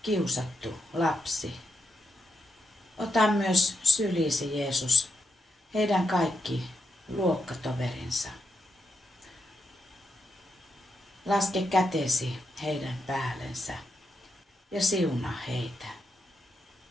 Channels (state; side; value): normal; both; correlation 0.84